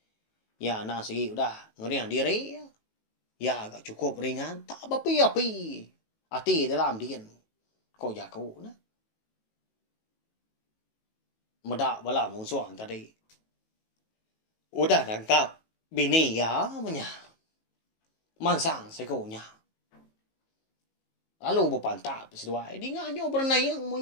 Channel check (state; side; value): late; right; 18 ms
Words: Ya na sige udah ngeriang diri. Ya agak cukup ringan. Tak api-api. Hati dalam dian. Kau jago na. Medak bala musuh tadi. Udah nangkap bini ya punya. Mansang sekonya. Lalu berpantap seduai. Di nganyo bernayang